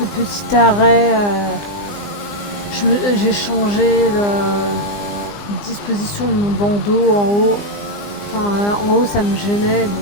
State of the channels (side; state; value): right; late; 20 ms